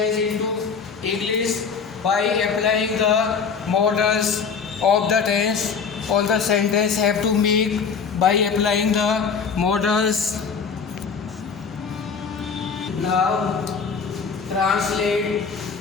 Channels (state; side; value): quieter; right; 5.8 dB